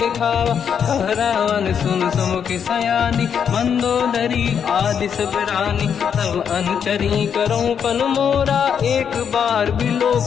दिखावा। कह रावण सुन सुमुखि सयानी, मंदोदरी आदि सब रानी। तब अनुचरी करो पन मोरा, एक बार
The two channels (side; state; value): right; quieter; 7.6 dB